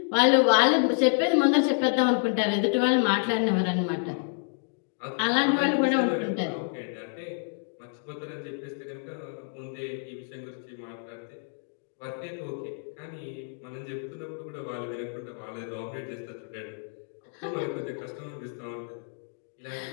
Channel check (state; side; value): silent; right; 59 dB below the other